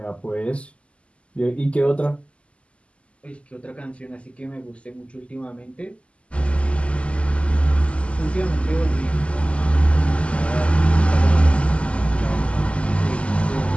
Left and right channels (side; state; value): right; late; 0.058 ms